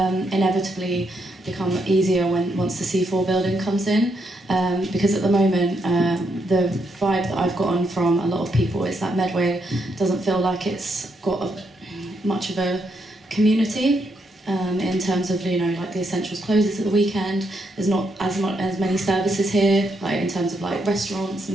become easier once the C4 building comes in, because at the moment the vibe that I've gotten from a lot of people is that Medway doesn't feel like it's got much of a community. In terms of like the Essentials closes at the weekend, there's not as many services here, like in terms of like restaurants and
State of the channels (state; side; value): normal; both; correlation 0.78